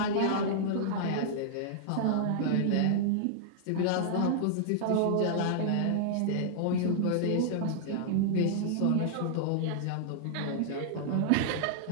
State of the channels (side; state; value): both; different; correlation -0.01